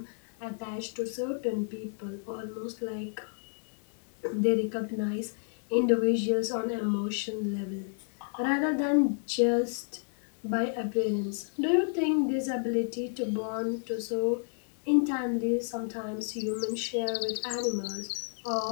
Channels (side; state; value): right; silent; 57 dB below the other